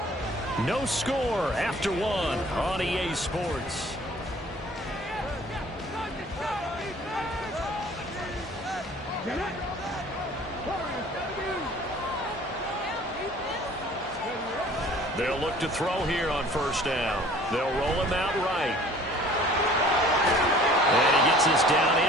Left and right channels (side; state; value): both; normal; correlation 0.50